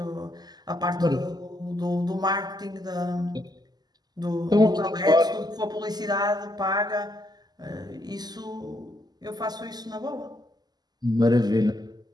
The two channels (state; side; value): late; left; 0.20 ms